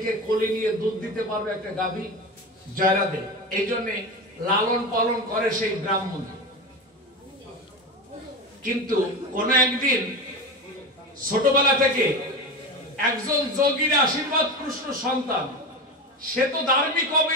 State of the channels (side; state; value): both; normal; correlation 0.23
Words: কোলে নিয়ে দুধ দিতে পারবে একটা গাভী? জয় রাধে। এই জন্যে লালন পালন করে সেই ব্রাহ্মণ। কিন্তু কোন একদিন ছোটবেলা থেকে একজন যোগীর আশীর্বাদ কৃষ্ণ সন্তান, সে তো ধার্মিক হবে